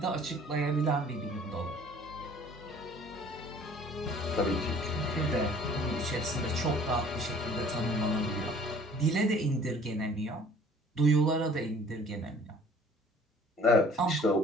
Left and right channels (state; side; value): normal; both; correlation 0.53